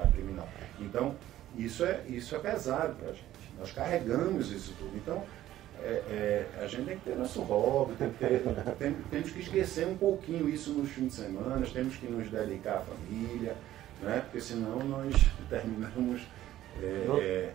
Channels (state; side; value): quieter; left; 13.6 dB